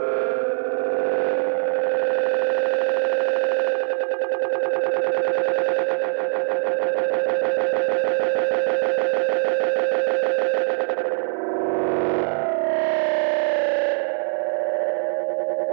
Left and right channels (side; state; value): left; silent; 64 dB below the other